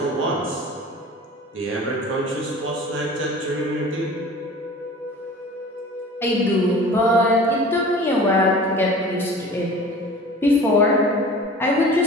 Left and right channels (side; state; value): both; normal; correlation 0.41